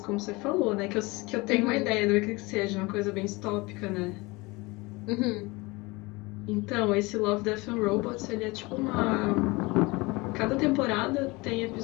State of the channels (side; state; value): right; quieter; 24.0 dB